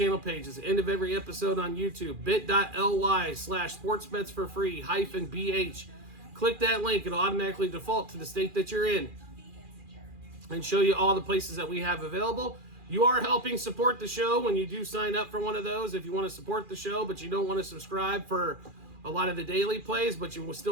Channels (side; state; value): left; late; 2.4 ms